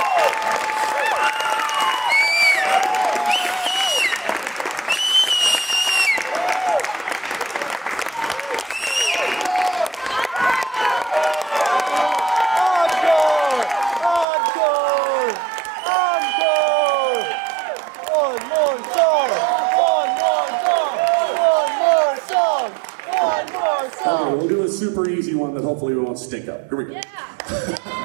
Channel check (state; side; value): drops out; left; at 14.2 s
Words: Okay, we'll do a super easy one that hopefully we won't stink up. Here we go.